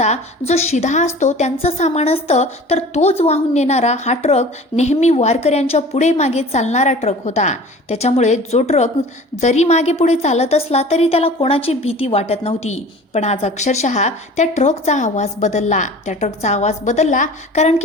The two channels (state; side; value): normal; both; correlation 0.42